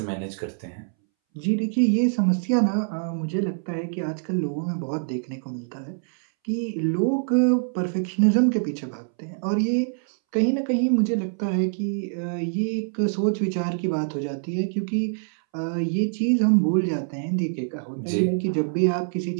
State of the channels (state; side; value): silent; left; 62 dB below the other